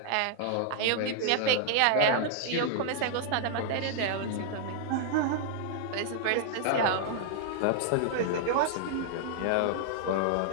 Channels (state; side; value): different; both; correlation -0.01